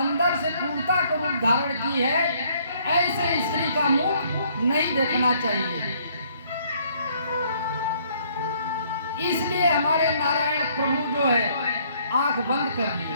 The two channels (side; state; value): both; inverted; correlation -0.64